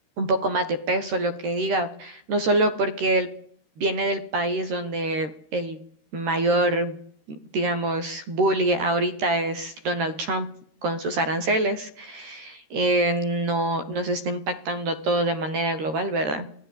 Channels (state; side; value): late; left; 13 ms